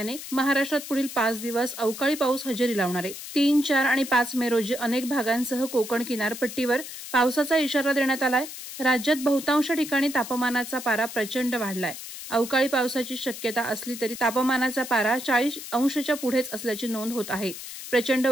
महाराष्ट्रात पुढील 5 दिवस अवकाळी पाऊस हजेरी लावणार आहे. 3, 4 आणि 5 मे रोजी अनेक भागांसह कोकण किनारपट्टीवर पावसाचा इशारा देण्यात आलाय. राज्यात बहुतांश ठिकाणी तापमानाचा पारा प्रचंड वाढलाय. अवकाळी पावसाची शक्यता असली तरी तापमानाचा पारा 40 अंशाच्या पुढेच असल्याची नोंद होत आहे. प्रचंड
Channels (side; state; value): left; noise; hiss, 11 dB below the sound